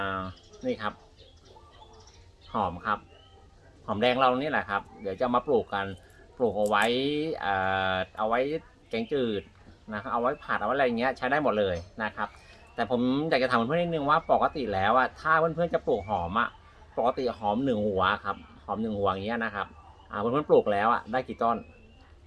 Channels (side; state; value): both; identical; correlation 1.00